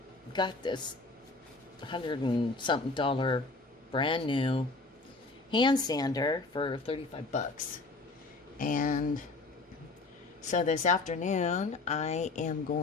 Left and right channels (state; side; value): quieter; right; 3.5 dB